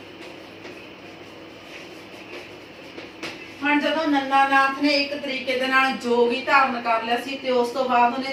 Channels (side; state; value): both; identical; correlation 1.00